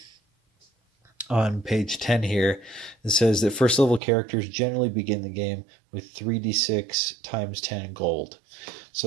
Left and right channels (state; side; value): drops out; left; at 4.0 s